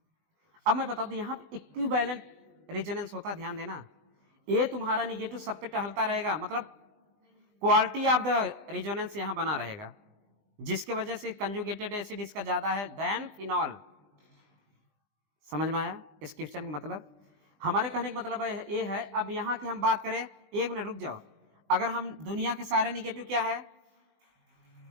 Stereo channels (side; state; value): left; late; 20 ms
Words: अब मैं बता दूं, यहां इक्विवेलेंट रेजोनेंस होता है, ध्यान देना। ये तुम्हारा निगेटिव सब पे टहलता रहेगा, मतलब क्वालिटी ऑफ द रेजोनेंस यहां बना रहेगा, जिसके वजह से कंजुगेटेड एसिड इसका ज्यादा है देन फिनॉल। समझ में आया इस क्वेश्चन का मतलब? हमारे कहने का मतलब है ये है। अब यहां की हम बात करें, एक मिनट रुक जाओ। अगर हम दुनिया के सारे निगेटिव क्या है,